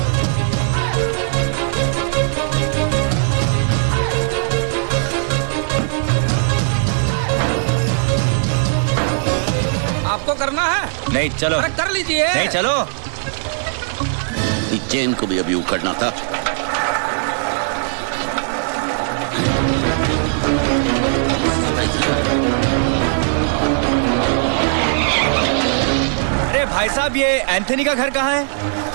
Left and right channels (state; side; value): silent; left; 67 dB below the other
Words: आपको करना है? नहीं, चलो। अरे कर लीजिए। नहीं, चलो। इस चेन को भी अभी उखड़ना था। अरे भाई साहब, ये एंथनी का घर कहाँ है?